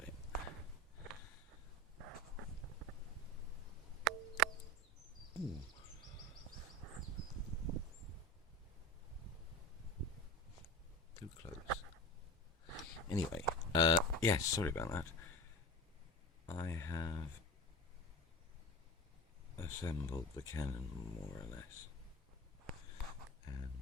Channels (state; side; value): normal; both; correlation 0.31